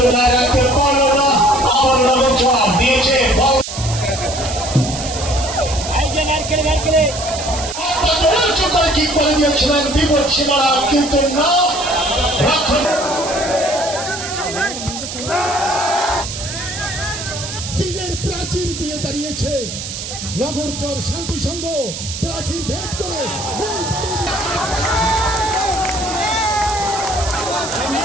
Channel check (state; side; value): noise; right; hiss, 8 dB below the sound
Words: রাখতে পারলো না, আমার জবাব দিয়েছে কি করে দিয়েছিলেন বিপদ সীমানা, কিন্তু না সিংহের প্রাচীর দিয়ে দাঁড়িয়েছে নগরচর শান্তি সংঘ প্রাচীর ভেদ করে